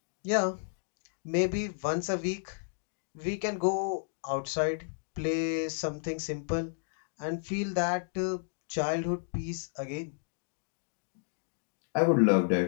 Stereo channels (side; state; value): right; silent; digital silence